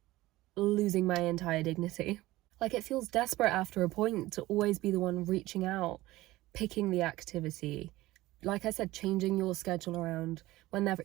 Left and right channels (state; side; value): quieter; left; 17.8 dB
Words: losing my entire dignity. Like, it feels desperate after a point to always be the one reaching out, picking the activity. Like I said, changing your schedule around whenever.